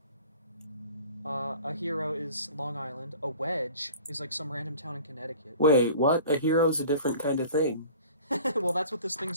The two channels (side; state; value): both; inverted; correlation -0.44